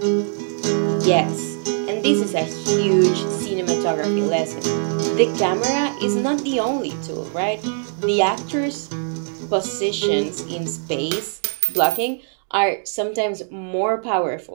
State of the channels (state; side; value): silent; left; digital silence